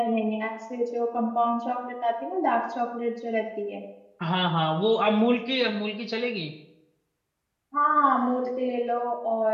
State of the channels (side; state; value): both; identical; correlation 1.00